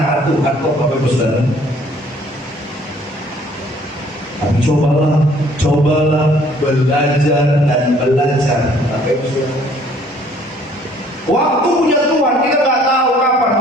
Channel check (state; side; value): normal; both; correlation 0.59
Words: Tuhan kok Bapak Ibu Saudara. Tapi cobalah belajar dan belajar. Waktu punya Tuhan kita nggak tahu kapan,